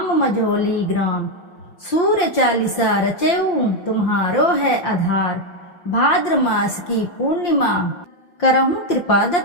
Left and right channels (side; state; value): right; late; 5.7 ms